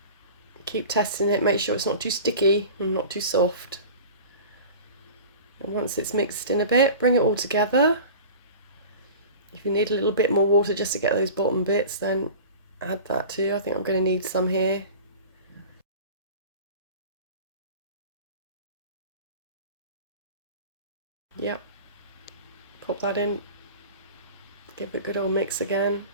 Keep testing it, make sure it's not too sticky and not too soft. And once it's mixed in a bit, bring it all together. If you need a little bit more water just to get those bottom bits, then add that too. I think I'm going to need some here. Yep. Pop that in. Give it a good old mix again.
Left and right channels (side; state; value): both; inverted; correlation -0.38